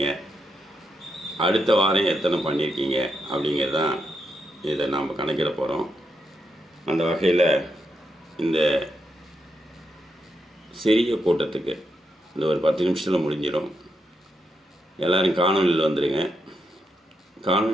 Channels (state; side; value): normal; both; correlation 0.82